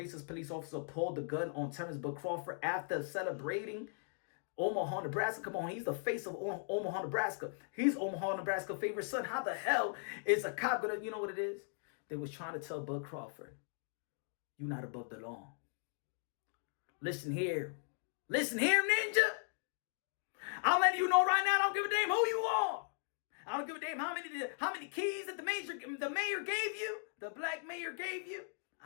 police officer, pulled the gun on Terence Crawford after celebrating Omaha, Nebraska. Come on, he's the face of Omaha, Nebraska. He's Omaha, Nebraska favorite son. How the hell is a cop gonna, you know what it is? They was trying to tell Bud Crawford, you're not above the law. Listen here, ninja. I'm letting you know right now, I don't give a damn who you are. I don't give a damn how many keys that the mayor gave you, the black mayor gave you.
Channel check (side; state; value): right; silent; digital silence